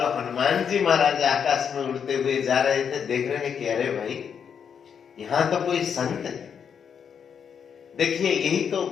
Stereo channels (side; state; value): right; quieter; 7.3 dB